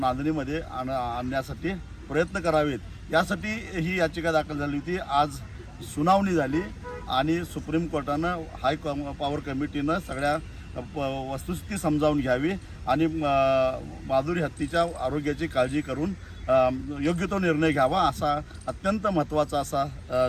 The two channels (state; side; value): identical; both; correlation 1.00